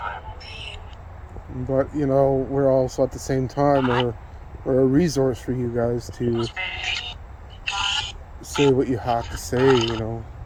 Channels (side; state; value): both; identical; correlation 1.00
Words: But, you know, we're also at the same time, we're a resource for you guys to say what you have to say, you know.